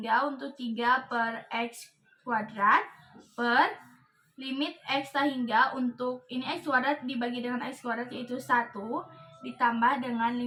untuk 3 per X kuadrat per limit X tak hingga untuk ini X kuadrat dibagi dengan X kuadrat yaitu 1 ditambah dengan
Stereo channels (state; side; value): identical; both; correlation 1.00